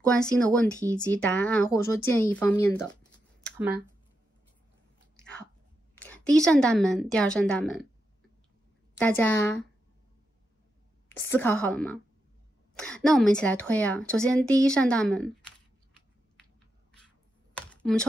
关心的问题以及答案或者说建议方面的，好吗？好，第1扇大门，第2扇大门。大家思考好了吗？那我们一起来推啊。首先，第1扇大门，我们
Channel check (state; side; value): normal; both; correlation 0.86